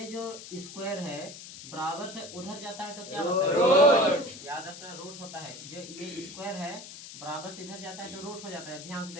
जो स्क्वायर है बराबर से उधर जाता है तो क्या होता है? रूट। याद रखना रूट होता है। जो ये स्क्वायर है बराबर से इधर जाता है तो रूट हो जाता है। ध्यान से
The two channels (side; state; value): left; noise; hiss, 13 dB below the sound